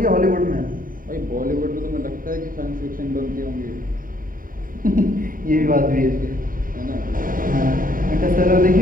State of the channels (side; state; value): left; late; 0.41 ms